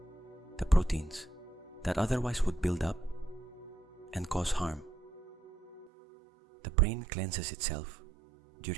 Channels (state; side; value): drops out; left; at 5.9 s